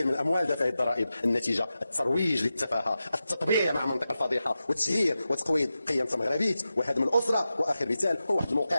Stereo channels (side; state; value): both; inverted; correlation -0.92